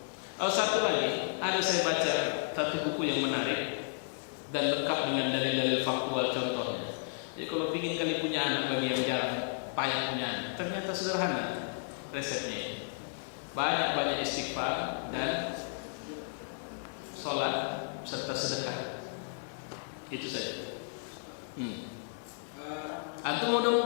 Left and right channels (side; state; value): right; silent; digital silence